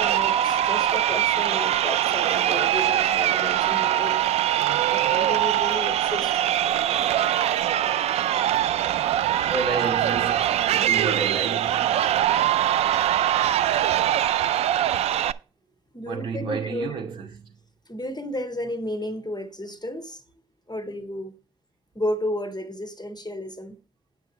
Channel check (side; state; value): left; quieter; 9.3 dB